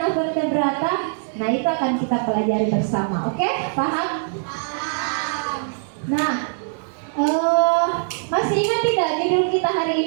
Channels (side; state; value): left; silent; digital silence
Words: avertebrata? Nah, itu akan kita pelajari bersama. Oke, paham? Nah, masih ingat tidak judul kita hari